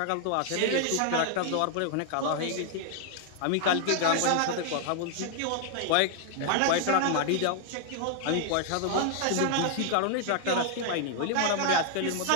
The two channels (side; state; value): both; different; correlation 0.00